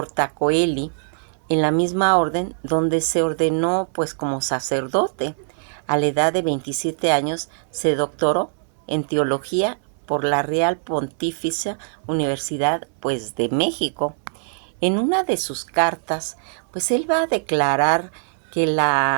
en la misma orden donde se ordenó pues como sacerdote. A la edad de 27 años se doctoró en teología por la Real Pontificia Universidad pues de México. En una de sus cartas, pues él va a declarar que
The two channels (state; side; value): silent; left; 64 dB below the other